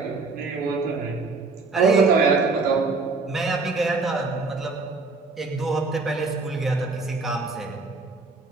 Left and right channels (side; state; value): left; quieter; 3.9 dB